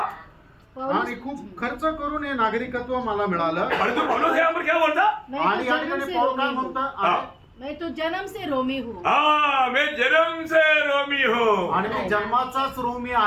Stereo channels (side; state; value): both; identical; correlation 1.00